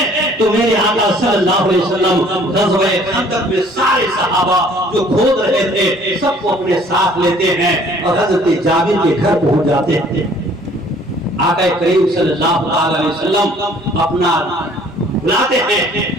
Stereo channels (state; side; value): normal; both; correlation 0.56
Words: تو میرے آقا صلی اللہ علیہ وسلم غزوہ خندق میں سارے صحابہ جو کھود رہے تھے سب کو اپنے ساتھ لیتے ہیں اور حضرت جابر کے گھر پہنچ جاتے ہیں۔ آقا کریم صلی اللہ علیہ وسلم اپنا بلاتے ہیں